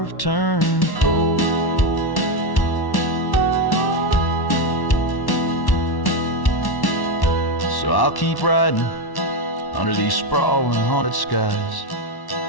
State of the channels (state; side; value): late; right; 1.1 ms